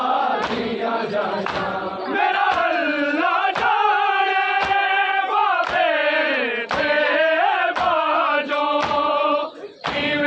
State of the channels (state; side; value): identical; both; correlation 1.00